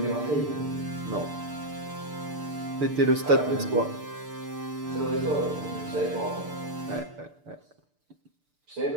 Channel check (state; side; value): late; left; 6.8 ms